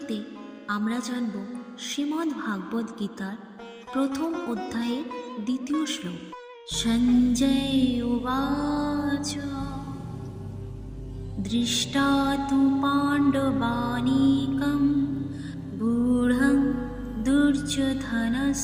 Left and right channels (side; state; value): both; identical; correlation 1.00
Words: আমরা জানব শ্রীমদ্ ভাগবত গীতার প্রথম অধ্যায়ের দ্বিতীয় শ্লোক। সঞ্জয় উবাচ দৃষ্টা তু পাণ্ডবানীকং গূঢ়ং